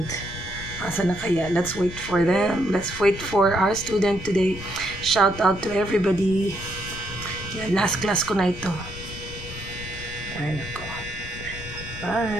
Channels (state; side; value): noise; left; rumble, 12 dB below the sound